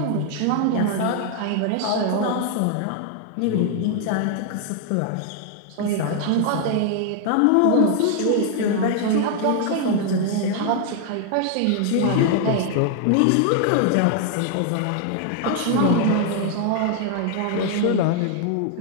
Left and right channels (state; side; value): different; both; correlation 0.00